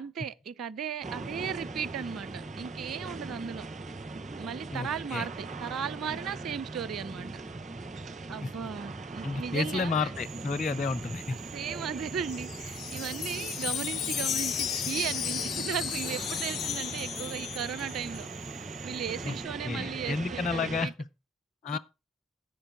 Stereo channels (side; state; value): both; normal; correlation 0.54